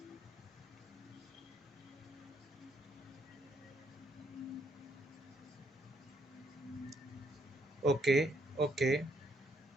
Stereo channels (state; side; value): normal; both; correlation 0.72